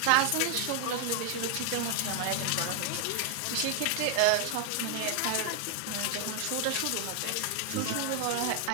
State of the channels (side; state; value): both; different; correlation 0.00